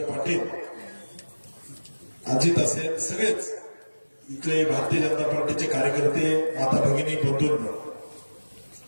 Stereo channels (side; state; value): both; inverted; correlation -1.00